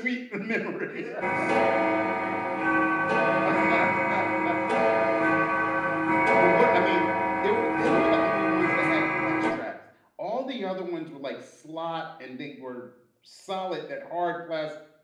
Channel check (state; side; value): identical; both; correlation 1.00